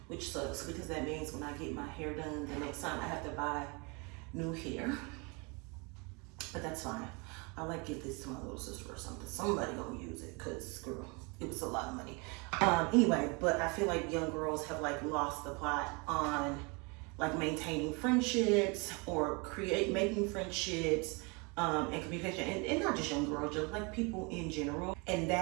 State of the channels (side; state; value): left; quieter; 30.2 dB